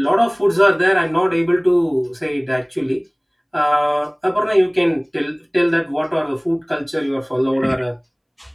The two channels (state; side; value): identical; both; correlation 1.00